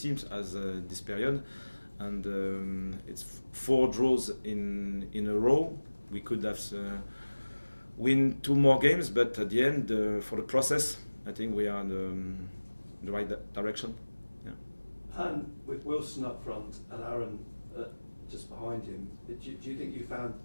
has this period, and it's 4 draws in a row. We could have win 2 more games, but at the end, for the process, I think we are in the right direction. And with Wilson up front and Aaron just behind him, do you think you found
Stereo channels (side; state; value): both; inverted; correlation -1.00